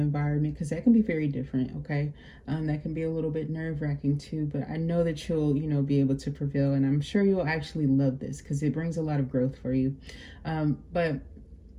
because that can be very different. Okay. That can be a little bit nerve-wracking too, but I know that you'll, you know, be able to prevail, and I'm sure you'll actually love this because it brings a lot of growth for you. But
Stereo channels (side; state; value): both; identical; correlation 1.00